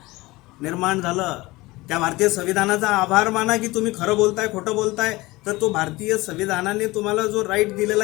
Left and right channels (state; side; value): quieter; right; 20.9 dB